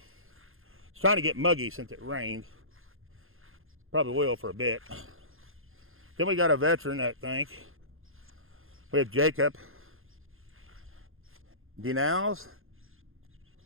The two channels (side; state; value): left; late; 0.60 ms